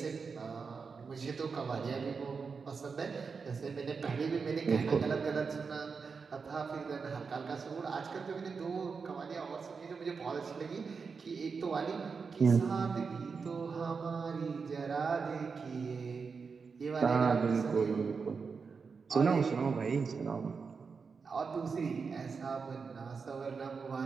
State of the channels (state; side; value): quieter; left; 5.2 dB